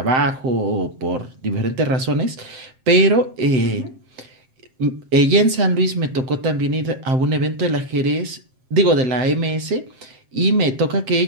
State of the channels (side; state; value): left; late; 7.7 ms